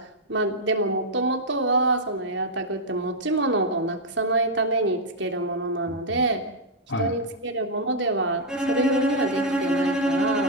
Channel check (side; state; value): both; normal; correlation -0.04